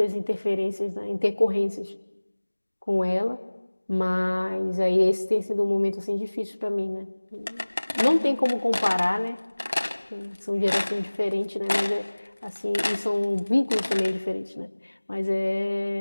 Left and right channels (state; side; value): inverted; both; correlation -1.00